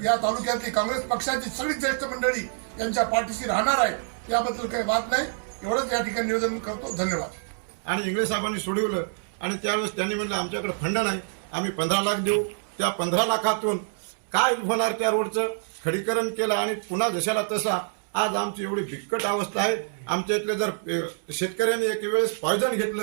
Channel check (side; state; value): left; silent; digital silence